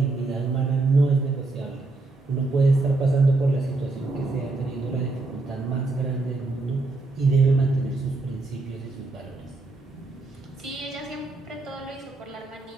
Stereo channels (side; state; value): left; quieter; 3.3 dB